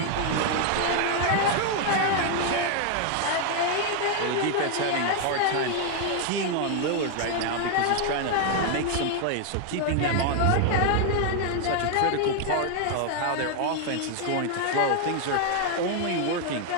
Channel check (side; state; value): both; different; correlation 0.00